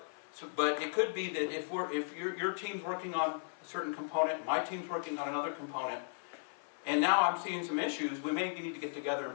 But it could be that if your team's working on a certain component, my team's working on another component, and now I'm seeing some issues, we may need to get together and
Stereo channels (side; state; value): right; silent; 54 dB below the other